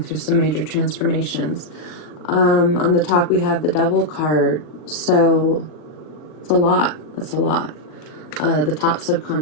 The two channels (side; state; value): right; late; 39 ms